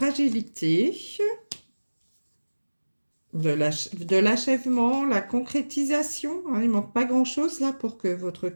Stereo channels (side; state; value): both; inverted; correlation -1.00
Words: de l'achèvement, la concrétisation. Hein, il ne manque pas grand-chose là pour que votre